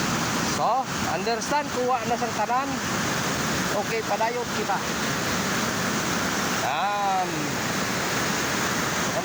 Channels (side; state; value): both; identical; correlation 1.00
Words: So, understand kuha na sang tanan. Okay, padayot kita. Ang